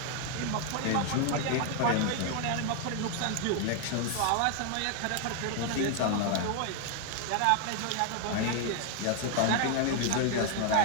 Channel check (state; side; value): different; both; correlation 0.00